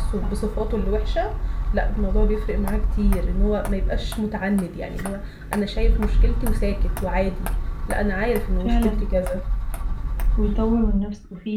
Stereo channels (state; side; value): identical; both; correlation 1.00